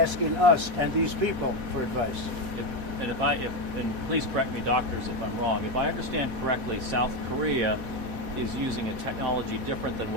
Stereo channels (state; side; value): late; left; 4.1 ms